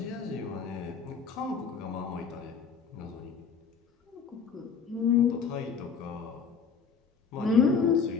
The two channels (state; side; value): quieter; right; 5.9 dB